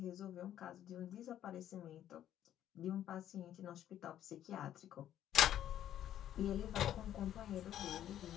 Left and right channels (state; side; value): quieter; right; 11.3 dB